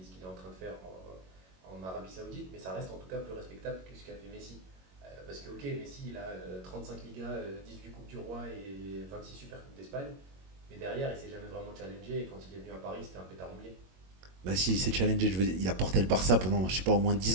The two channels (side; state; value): left; late; 21 ms